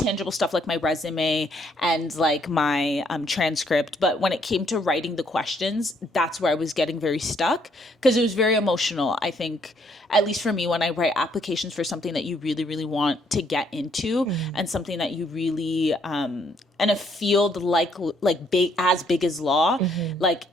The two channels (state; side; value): normal; both; correlation 0.69